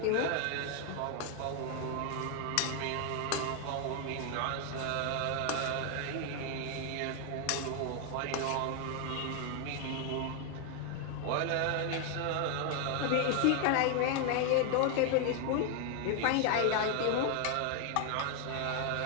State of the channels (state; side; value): different; both; correlation 0.00